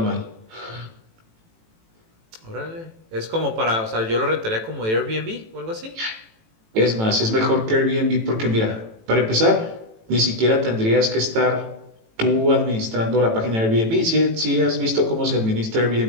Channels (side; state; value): left; late; 18 ms